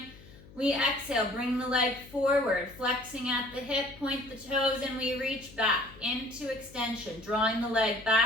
We exhale, bring the leg forward, flexing at the hip, point the toes, and we reach back into extension, drawing the leg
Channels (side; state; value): left; noise; hum, 21 dB below the sound